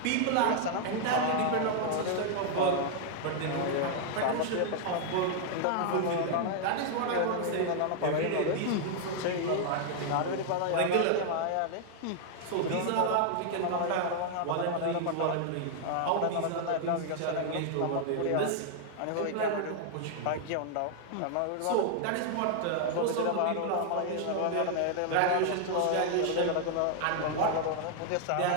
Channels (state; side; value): different; both; correlation 0.00